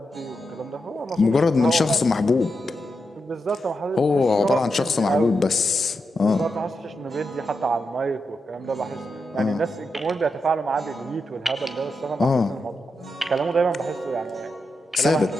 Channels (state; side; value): normal; both; correlation 0.86